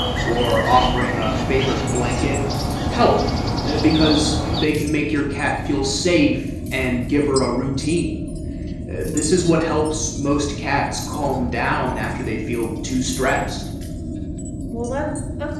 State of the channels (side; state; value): both; identical; correlation 1.00